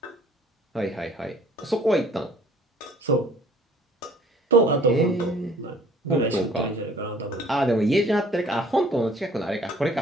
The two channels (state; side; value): normal; both; correlation 0.55